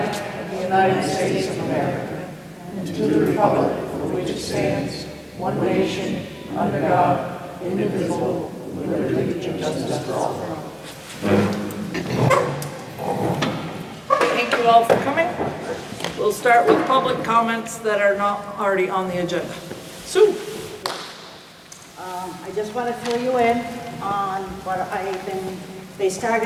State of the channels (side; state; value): both; identical; correlation 1.00